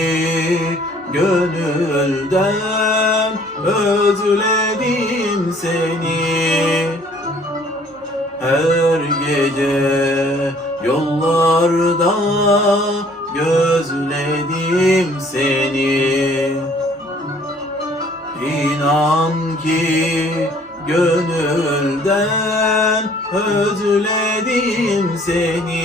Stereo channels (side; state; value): both; normal; correlation 0.57